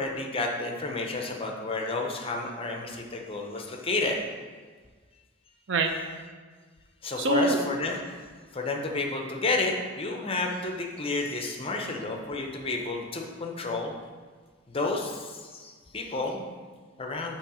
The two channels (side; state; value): both; normal; correlation 0.13